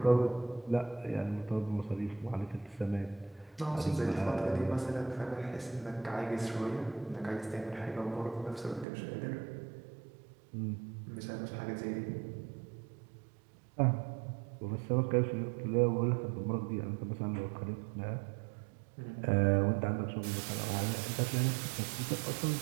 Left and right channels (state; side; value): drops out; left; at 8.8 s